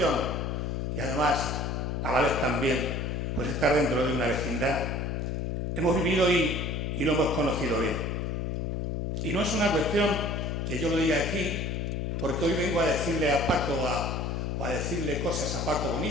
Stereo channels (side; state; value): left; noise; hum, 1 dB below the sound